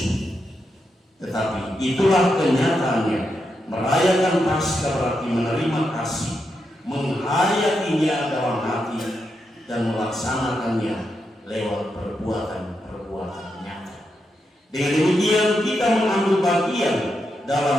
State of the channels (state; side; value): normal; both; correlation 0.84